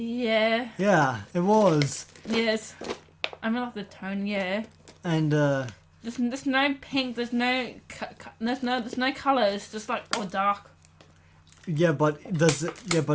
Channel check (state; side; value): identical; both; correlation 1.00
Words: Yeah, it was. Yes. I mean, like the tone. Yeah. And There's no pink. There's no colour. It's just like all dark. but does